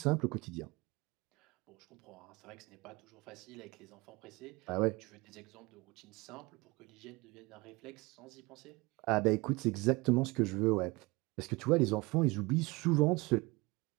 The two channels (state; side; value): quieter; left; 24.0 dB